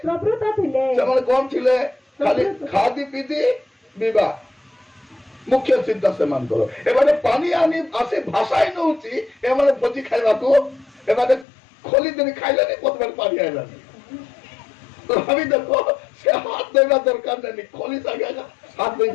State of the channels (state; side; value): drops out; right; at 11.5 s